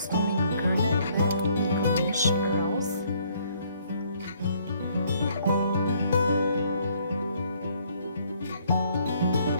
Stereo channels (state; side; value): inverted; both; correlation -0.65